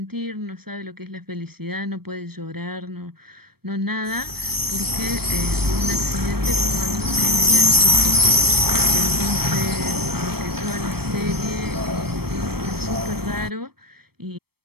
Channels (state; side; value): late; left; 0.96 ms